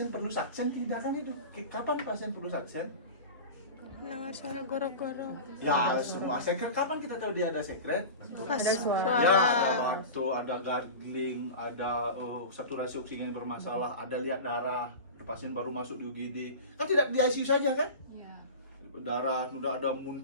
perlu saksen tidak kan. Itu kapan pasien perlu saksen? Dengar suara goro-goro. Ya semua sekret. Kapan kita tahu dia ada sekret? Pas Ya suara. ada batuk, ada gargling, ada saturasi oksigen bermasalah, ada lihat darah, pasien baru masuk di UGD. Kan tidak di ICU saja kan? Iya. Darah, udah ada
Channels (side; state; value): both; inverted; correlation -0.31